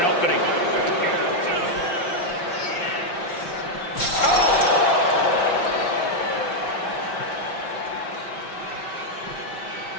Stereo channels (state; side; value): late; right; 5.7 ms